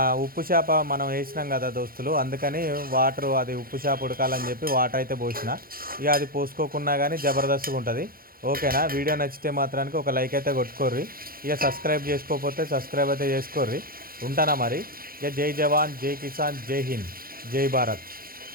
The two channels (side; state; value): left; late; 0.42 ms